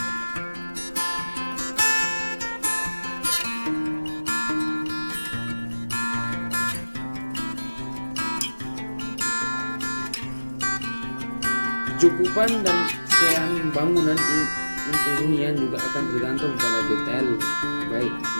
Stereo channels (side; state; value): both; inverted; correlation -1.00